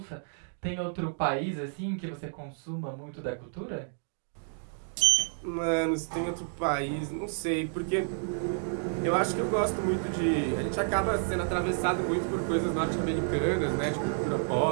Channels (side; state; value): left; silent; digital silence